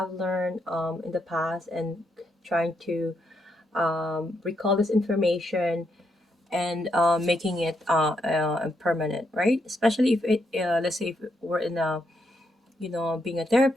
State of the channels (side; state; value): both; normal; correlation 0.79